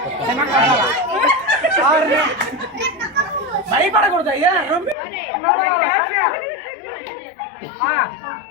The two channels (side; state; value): right; drops out; at 5.0 s